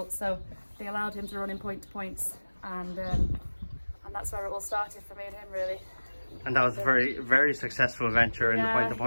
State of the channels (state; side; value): inverted; both; correlation -1.00